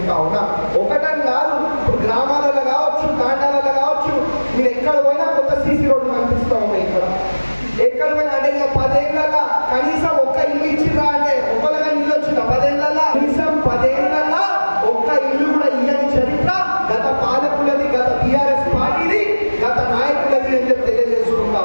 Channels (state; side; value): inverted; both; correlation -1.00